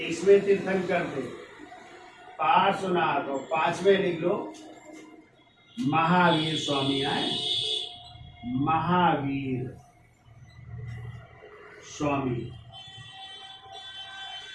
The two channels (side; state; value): both; identical; correlation 1.00